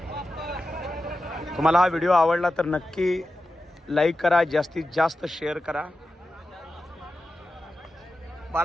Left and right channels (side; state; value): both; normal; correlation 0.92